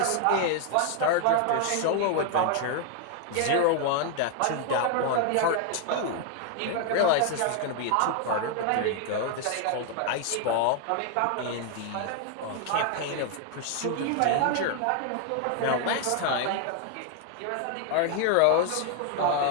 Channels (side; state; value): both; different; correlation 0.00